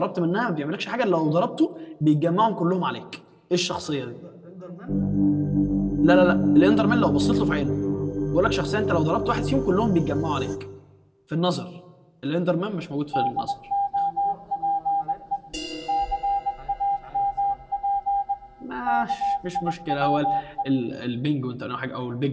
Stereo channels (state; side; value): identical; both; correlation 1.00